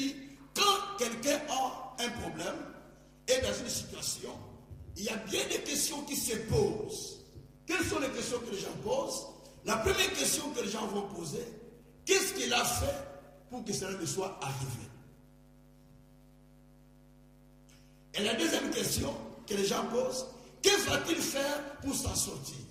quand quelqu'un a un problème et dans une situation, il y a bien des questions qui se posent. Quelles sont les questions que les gens posent? La première question que les gens vont poser, qu'est-ce qu'il a fait pour que cela ne soit arrivé? Et la deuxième question que les gens posent, que va-t-il faire pour s'en sortir?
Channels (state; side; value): identical; both; correlation 1.00